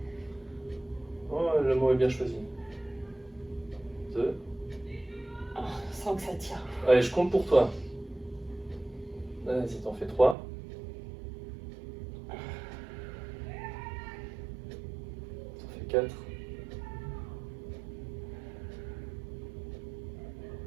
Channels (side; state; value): left; drops out; at 10.4 s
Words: Oh, le mot est bien choisi. 2. Sans que ça tire. Allez, je compte pour toi. Vas-y, t'en fais 3. T'en fais 4.